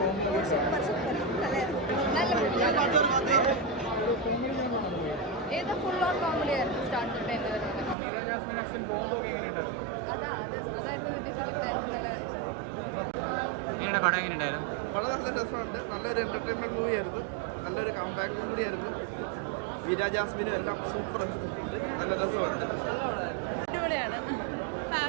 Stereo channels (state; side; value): drops out; left; at 8.0 s